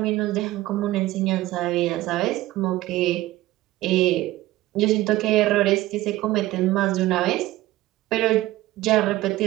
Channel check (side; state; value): left; quieter; 16.8 dB